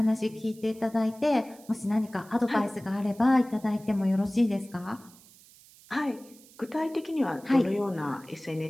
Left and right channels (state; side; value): noise; right; hiss, 24 dB below the sound